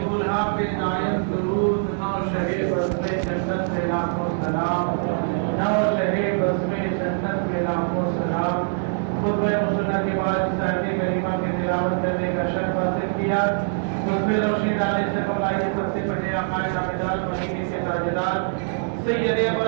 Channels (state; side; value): silent; left; digital silence